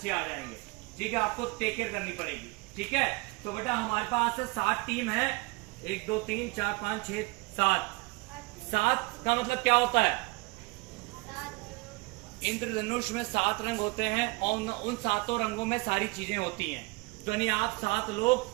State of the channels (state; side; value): quieter; left; 25.9 dB